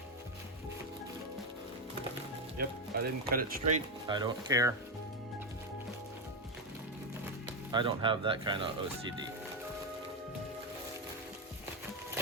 Yep, I didn't cut it straight. I don't care. I don't have that kind of OCD.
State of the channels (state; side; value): normal; both; correlation 0.08